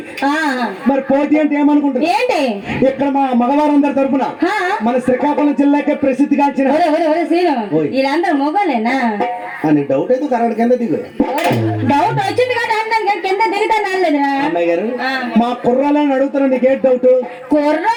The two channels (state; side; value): identical; both; correlation 1.00